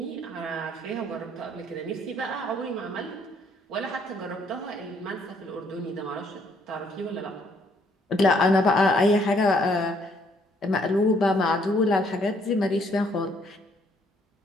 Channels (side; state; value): both; normal; correlation 0.66